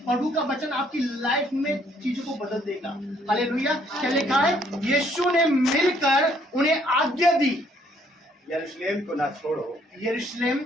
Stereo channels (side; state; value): both; normal; correlation 0.66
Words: प्रभु का वचन आपकी लाइफ में चीजों को बदल देगा। हालेलुया। क्या लिखा है? यीशु ने मिलकर उन्हें आज्ञा दी, यरूशलेम को ना छोड़ो। यरूशलेम